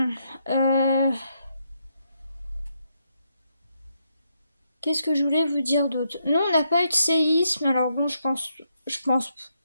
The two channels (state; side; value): inverted; both; correlation -0.79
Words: qu'est-ce que je voulais vous dire d'autre? Non, on n'a pas eu de séisme, alors bon, je pense